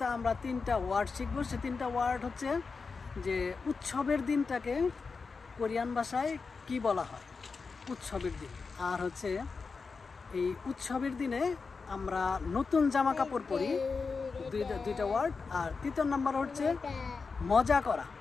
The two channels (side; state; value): right; quieter; 4.7 dB